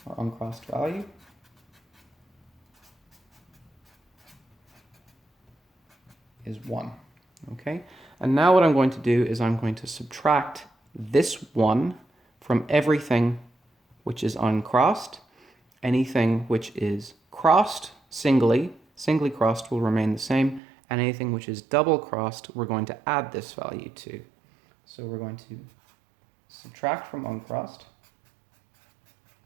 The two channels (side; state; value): left; drops out; at 20.6 s